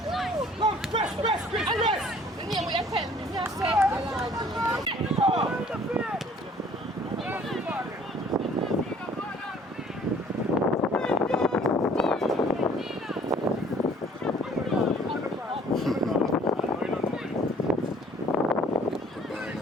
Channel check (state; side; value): normal; both; correlation 0.55